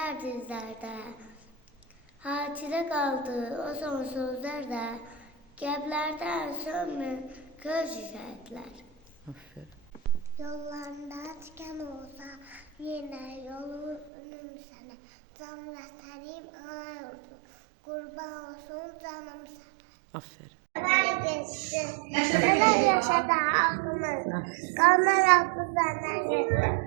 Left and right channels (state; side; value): drops out; left; at 14.1 s